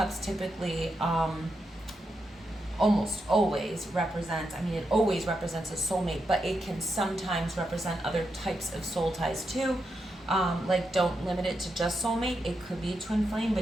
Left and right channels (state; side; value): normal; both; correlation 0.85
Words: typically almost always represents, it always represents a soulmate, but it can sometimes represent other types of soul ties too. Like, don't limit it to just soulmate. It could be twin flame,